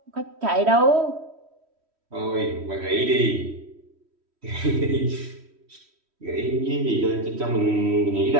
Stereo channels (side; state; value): left; late; 3.1 ms